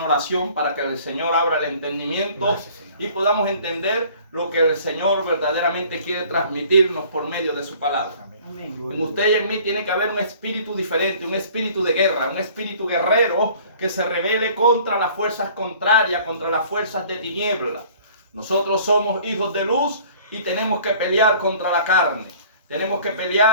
oración para que el Señor abra el entendimiento y podamos entender lo que el Señor verdaderamente quiere transmitirnos por medio de su palabra. En usted y en mí tiene que haber un espíritu diferente, un espíritu de guerra, un espíritu guerrero que se rebele contra las fuerzas contrarias, contra las fuerzas de tiniebla. Nosotros somos hijos de luz y tenemos que pelear contra la carne. Tenemos que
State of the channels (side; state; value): both; inverted; correlation -0.51